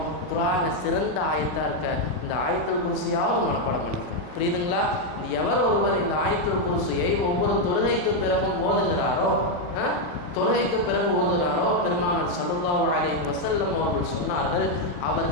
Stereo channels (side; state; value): right; late; 39 ms